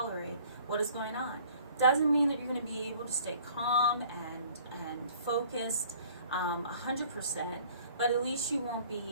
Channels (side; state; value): both; inverted; correlation -0.54